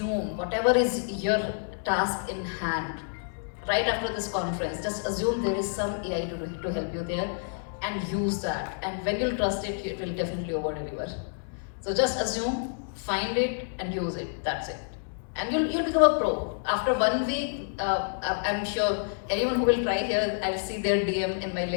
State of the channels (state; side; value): silent; right; digital silence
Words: whatever is your task in hand. Right after this conference, just assume there is some AI to help you there, and use that. And when you'll trust it, it will definitely over deliver. So just assume, find it, and use it. That's it. And you'll become a pro. After 1 week, I'm sure anyone who will try here, I'll see their DM in my